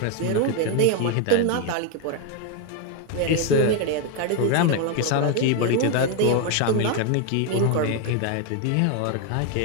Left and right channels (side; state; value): both; different; correlation 0.01